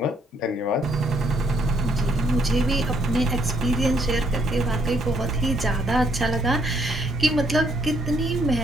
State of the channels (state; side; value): normal; both; correlation 0.70